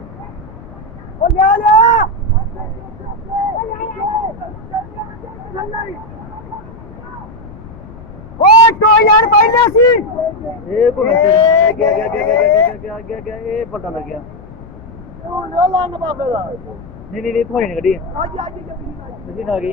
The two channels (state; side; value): noise; left; rumble, 17 dB below the sound